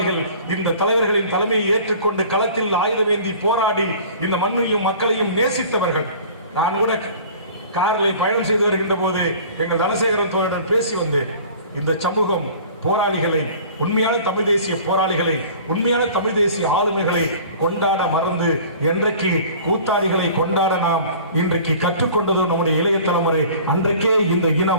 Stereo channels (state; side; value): inverted; both; correlation -0.45